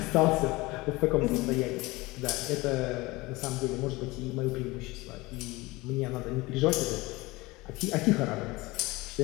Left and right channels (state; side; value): quieter; right; 21.9 dB